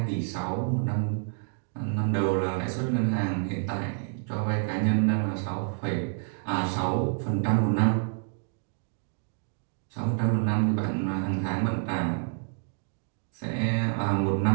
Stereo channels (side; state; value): left; silent; 59 dB below the other